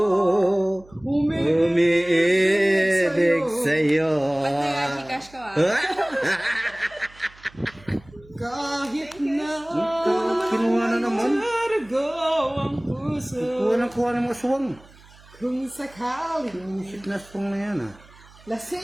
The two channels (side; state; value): right; noise; hum, 25 dB below the sound